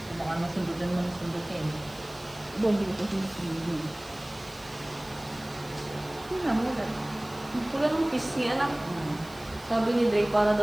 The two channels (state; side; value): noise; right; hiss, 21 dB below the sound